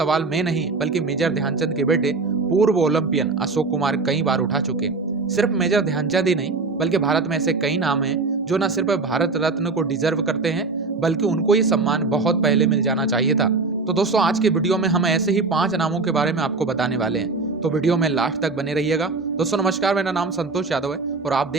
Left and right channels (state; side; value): quieter; left; 3.9 dB